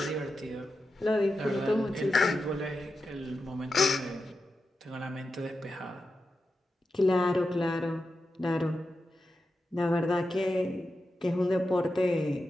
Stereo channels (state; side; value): normal; both; correlation 0.90